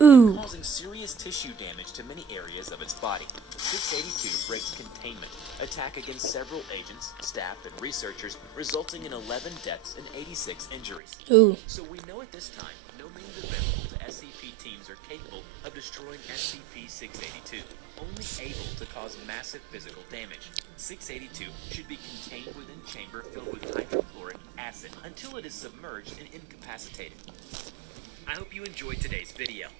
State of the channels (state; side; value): drops out; left; at 11.0 s